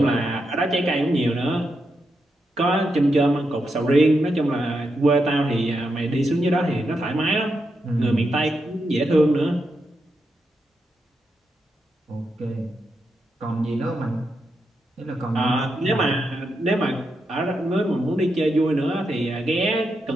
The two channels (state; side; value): normal; both; correlation 0.84